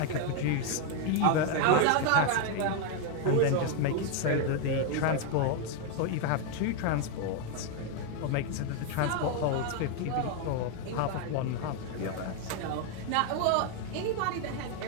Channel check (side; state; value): both; different; correlation 0.01